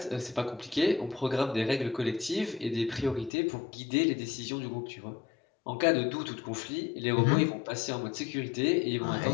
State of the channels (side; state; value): right; drops out; at 3.3 s